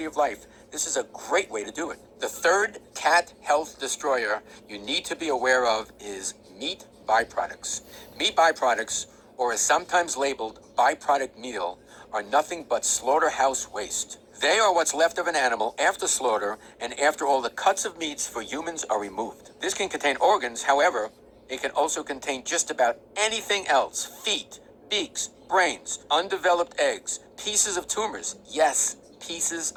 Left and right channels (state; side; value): identical; both; correlation 1.00